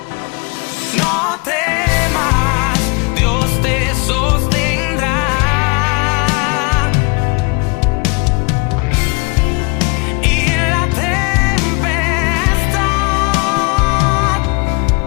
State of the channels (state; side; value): quieter; right; 30.4 dB